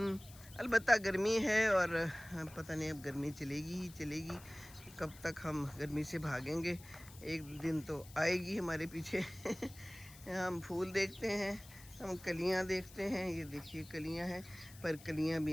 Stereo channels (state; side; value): noise; left; hiss, 19 dB below the sound